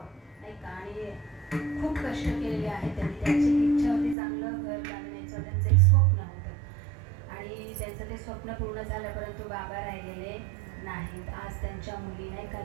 नाही का, आणि खूप कष्ट केलेले आहेत त्यांनी. त्यांची इच्छा होती चांगलं घर बांधण्याचं, त्यांचं एक स्वप्न होतं आणि त्यांचं ते स्वप्न पूर्ण झालं, परंतु बाबा राहिलेले नाहीत. आज त्यांच्या मुली नाही का,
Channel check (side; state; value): left; drops out; at 4.2 s